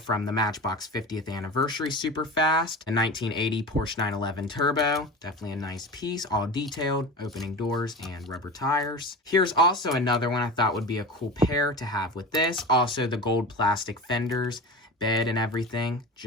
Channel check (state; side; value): normal; both; correlation 0.31